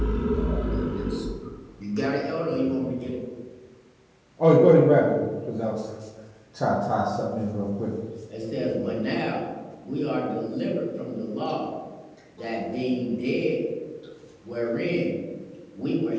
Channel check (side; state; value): both; identical; correlation 1.00